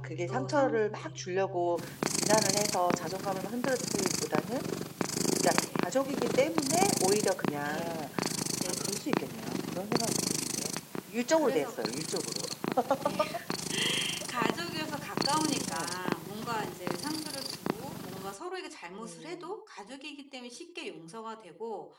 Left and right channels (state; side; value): identical; both; correlation 1.00